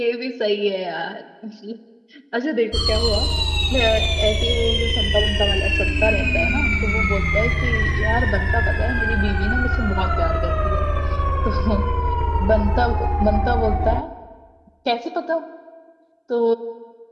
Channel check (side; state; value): both; identical; correlation 1.00